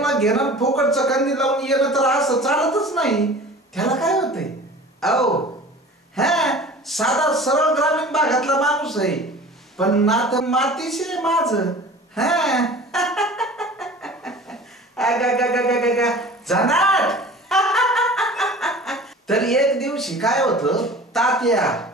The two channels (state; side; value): normal; both; correlation 0.41